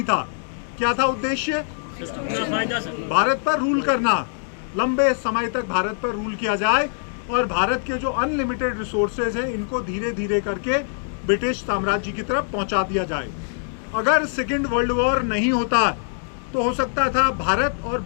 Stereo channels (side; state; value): right; silent; digital silence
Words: था। क्या था उद्देश्य? भारत पर रूल करना, लंबे समय तक भारत पर रूल किया जाए और भारत के जो अनलिमिटेड रिसोर्सेज हैं इनको धीरे धीरे करके ब्रिटिश साम्राज्य की तरफ पहुंचा दिया जाए। अगर सेकेंड वर्ल्ड वॉर नहीं होता तो हो सकता था भारत और